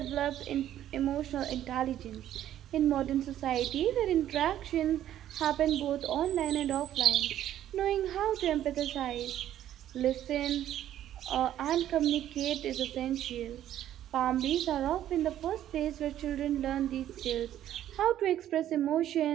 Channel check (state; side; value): quieter; left; 11.8 dB